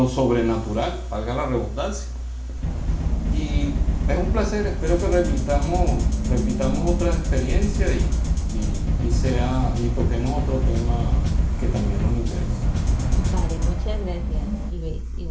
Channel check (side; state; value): both; identical; correlation 1.00